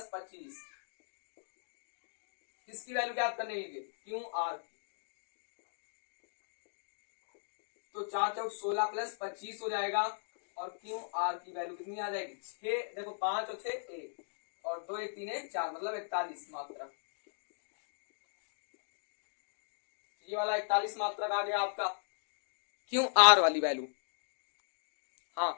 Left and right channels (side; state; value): right; silent; digital silence